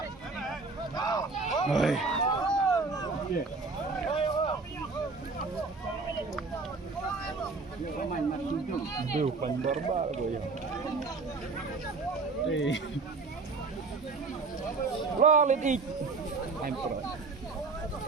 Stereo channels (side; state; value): left; quieter; 4.1 dB